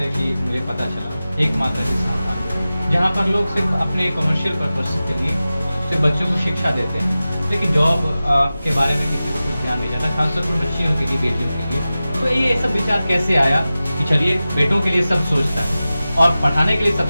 कि मुझे पता चला, एकमात्र संस्थान जहाँ पर लोग सिर्फ अपने कमर्शियल पर्पस के लिए सिर्फ बच्चों को शिक्षा देते हैं, लेकिन जॉब के बारे में किसी को कुछ ध्यान नहीं जाता, खासतौर पर बच्चियों के लिए, बेटियों के लिए। तो ये सब विचार कैसे आया कि चलिए बेटों के लिए सब सोचता है और पढ़ाने के लिए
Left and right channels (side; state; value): both; inverted; correlation -0.95